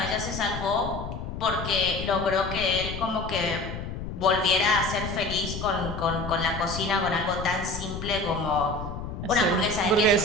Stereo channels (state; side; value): noise; left; rumble, 7 dB below the sound